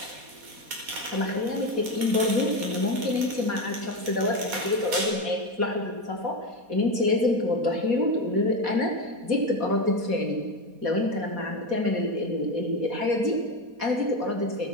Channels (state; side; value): late; left; 4.2 ms